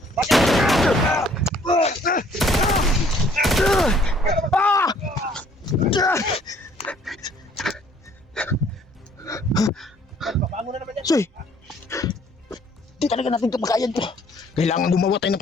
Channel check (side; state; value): both; normal; correlation 0.60